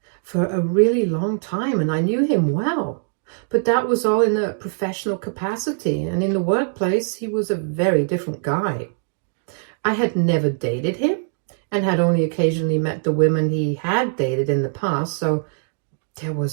for a really long time and I knew him well, but that was all in a professional capacity, and in the workplace he was a very different guy. I had never dated him and had only occasionally met the women he had dated in the past, so there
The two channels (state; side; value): silent; left; digital silence